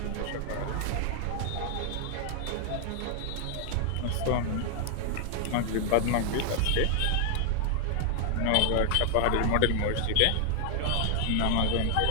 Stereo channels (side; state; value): both; different; correlation 0.00